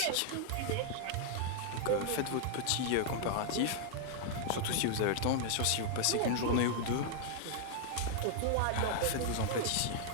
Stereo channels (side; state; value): both; different; correlation -0.01